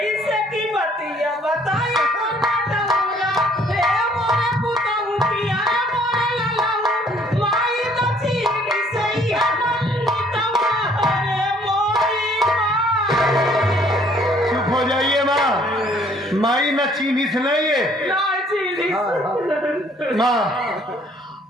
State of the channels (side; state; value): both; normal; correlation 0.61